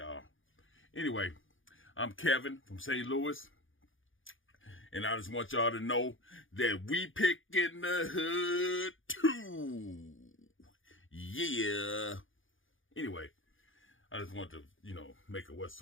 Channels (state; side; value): late; right; 0.58 ms